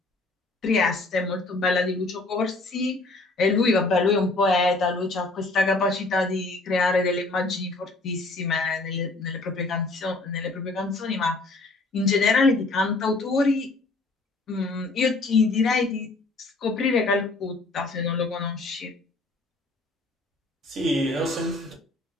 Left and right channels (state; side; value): quieter; right; 3.2 dB